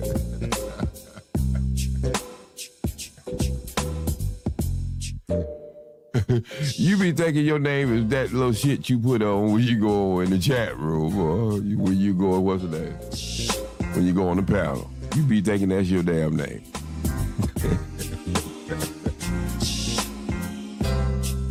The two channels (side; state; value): both; identical; correlation 1.00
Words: You be thinking your name is that little shit you put on when you go in the chat room or when you go, what's the name? When you go on the panel. You be thinking that's your damn name.